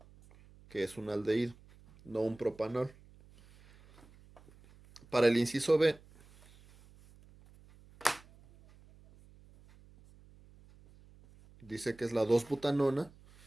que es un aldehído, no un propanol. Para el inciso B, dice que es la 2-butanona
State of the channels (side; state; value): right; noise; hum, 25 dB below the sound